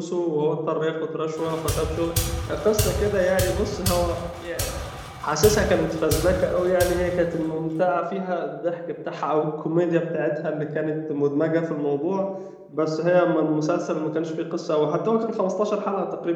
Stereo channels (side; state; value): both; identical; correlation 1.00